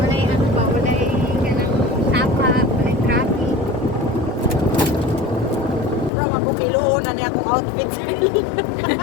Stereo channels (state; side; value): drops out; right; at 6.1 s